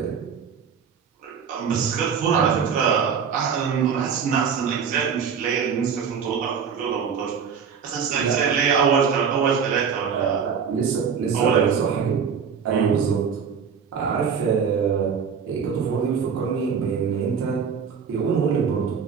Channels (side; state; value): left; quieter; 6.6 dB